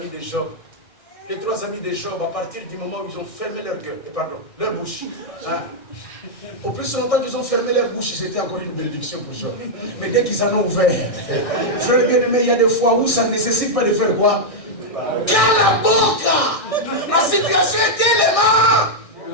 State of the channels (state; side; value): late; right; 1.6 ms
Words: de Job. Les 3 amis de Job, à partir du moment où ils ont fermé leur bouche. Hein? Au plus longtemps qu'ils ont fermé leur bouche, c'était encore une bénédiction pour Job. Mais dès qu'ils en ont ouvert, frère bien-aimé, il y a des fois où ça ne nécessite pas de faire quoi? Cala boca! La situation est tellement